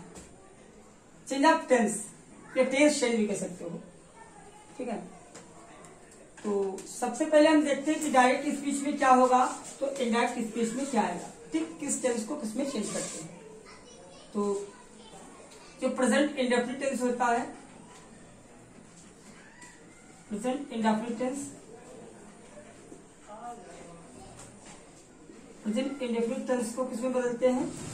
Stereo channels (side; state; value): both; identical; correlation 1.00